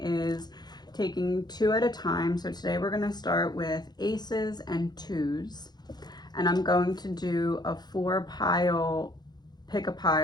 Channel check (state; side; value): late; right; 0.20 ms